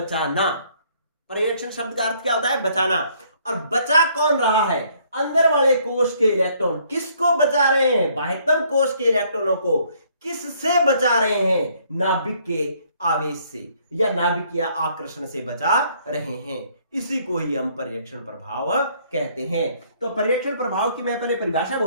परिरक्षण शब्द का अर्थ क्या होता है? बचाना। और बचा कौन रहा है? अंदर वाले कोश के इलेक्ट्रॉन। किसको बचा रहे हैं? बाह्यतम कोश के इलेक्ट्रॉनों को। किससे बचा रहे हैं? नाभिक के आवेश से या नाभिक के आकर्षण से बचा रहे हैं। इसी को ही हम परिरक्षण प्रभाव कहते हैं। तो परिरक्षण प्रभाव की मैं पहले परिभाषा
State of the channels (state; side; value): inverted; both; correlation -0.64